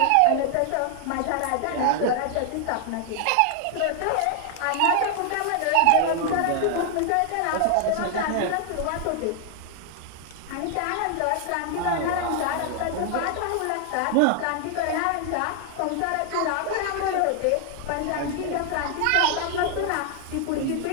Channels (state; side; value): different; both; correlation 0.00